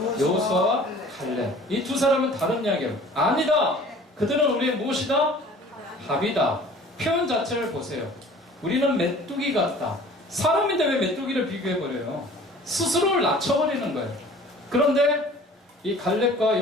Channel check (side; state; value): both; normal; correlation 0.48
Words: 여호수아와 갈렙. 이 두 사람은 다른 이야기예요. 아니다. 그들은 우리의 무엇이다? 밥이다. 표현 자체를 보세요. 우리는 메뚜기 같다. 사람인데 왜 메뚜기를 비교해버려요? 스스로를 낮춰버리는 거예요. 그런데 이 갈렙과